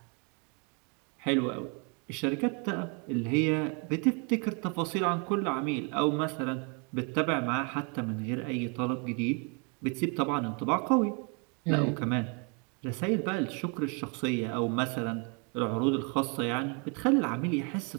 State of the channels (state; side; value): quieter; left; 34.4 dB